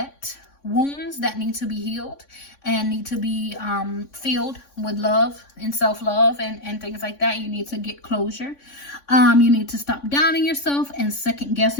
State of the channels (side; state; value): right; late; 3.5 ms